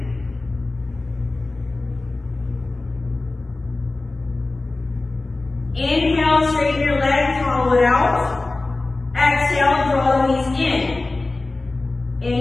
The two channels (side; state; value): right; quieter; 3.2 dB